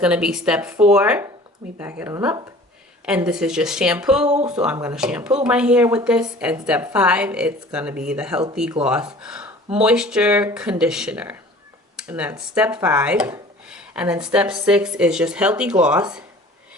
going to be step 4. Let me back it on up. And this is just shampoo. So I'm going to shampoo my hair with this. And step 5, it's going to be the Healthy Gloss Moisture Conditioner. And that's step 5. And then step 6 is just Healthy Gloss.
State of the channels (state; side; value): normal; both; correlation 0.46